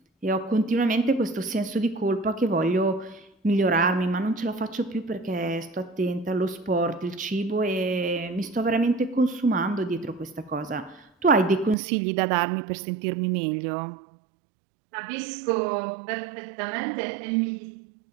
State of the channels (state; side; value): drops out; left; at 11.8 s